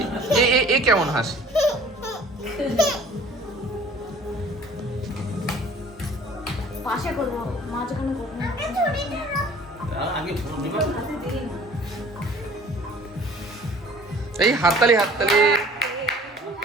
এ কেমন হাসি? পাশে করবো, মাঝখানে করবো না। এই হাততালি হাততালি।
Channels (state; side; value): normal; both; correlation 0.50